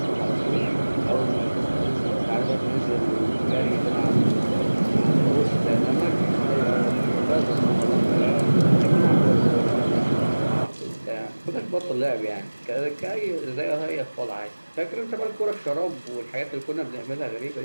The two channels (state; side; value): inverted; both; correlation -1.00